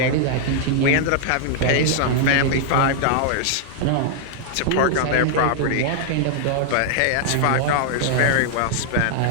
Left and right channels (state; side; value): different; both; correlation 0.00